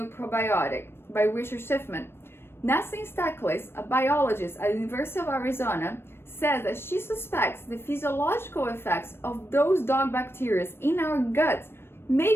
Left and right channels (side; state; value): right; late; 0.12 ms